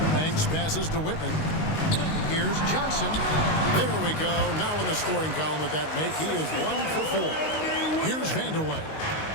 Banks passes to Whitman. Here's Johnson. There we go. Now in the scoring column with that make, he is 1 for 4. Here's Vandeweghe.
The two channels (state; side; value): late; right; 19 ms